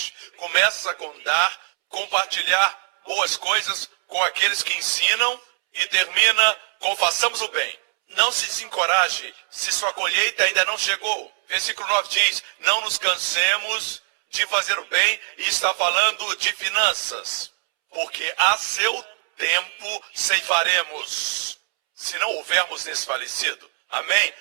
Começa com dar, compartilhar boas coisas com aqueles que ensinam e termina com façamos o bem. Não se desencoraje se sua colheita ainda não chegou. Versículo 9 diz: não nos cansemos de fazer o bem, e está falando de finanças. Porque a seu tempo ceifaremos, se não houvermos desfalecido. Amém?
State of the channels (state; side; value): silent; left; 64 dB below the other